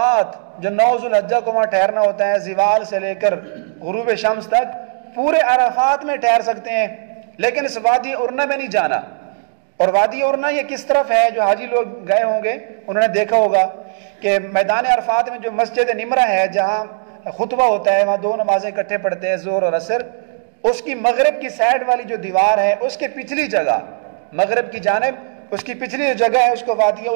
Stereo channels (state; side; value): silent; left; digital silence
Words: جو 9 ذو الحجہ کو وہاں ٹھہرنا ہوتا ہے، زوال سے لے کر غروب شمس تک پورے عرفات میں ٹھہر سکتے ہیں، لیکن اس وادی عرنا میں نہیں جانا۔ اور وادی عرنا یہ کس طرف ہے؟ جو حاجی لوگ گئے ہوں گے انہوں نے دیکھا ہوگا کہ میدان عرفات میں جو مسجد نمرہ ہے جہاں خطبہ ہوتا ہے، وہاں 2 نمازیں اکٹھے پڑھتے ہیں، ظہر اور عصر، اس کی مغرب کی سائڈ والی جو دیوار ہے اس کے پچھلی جگہ، مغرب کی جانب اس کی پچھلی جو جگہ ہے اس کو وادی